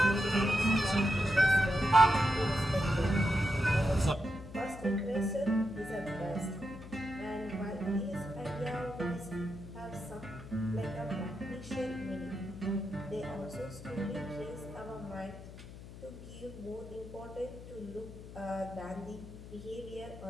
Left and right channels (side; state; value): left; noise; hum, 14 dB below the sound